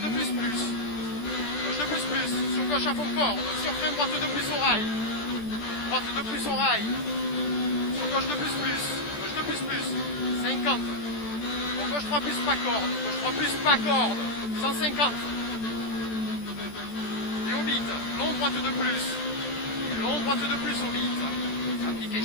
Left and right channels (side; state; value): right; late; 14 ms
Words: de plus. Gauche de plus, sur gauche à fond corde, sur frein droite de plus au rail. Droite de plus au rail. Sur gauche de plus, gauche de plus, 50. Pour gauche 3 plus, pas corde. Gauche 3 plus, pas corde. 150. Et au bit, long droite de plus. Et long droite de plus au bit. Appliqué,